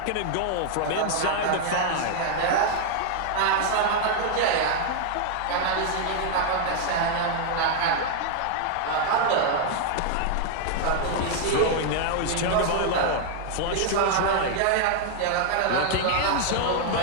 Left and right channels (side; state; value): both; different; correlation 0.00